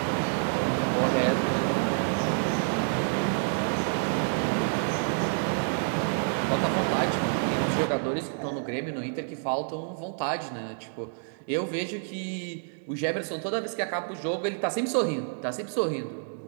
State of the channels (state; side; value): silent; left; digital silence